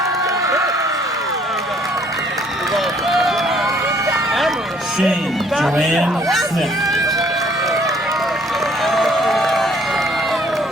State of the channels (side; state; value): both; normal; correlation 0.61